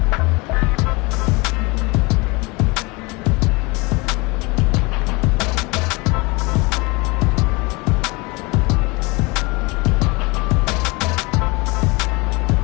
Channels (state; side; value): quieter; right; 26.0 dB